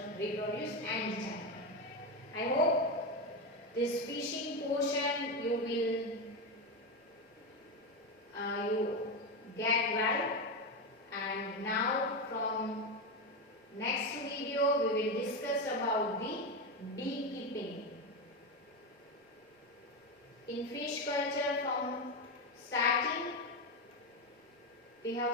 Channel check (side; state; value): both; normal; correlation 0.13